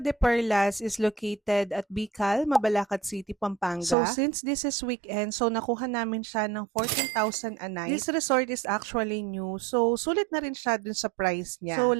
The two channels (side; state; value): left; drops out; at 4.0 s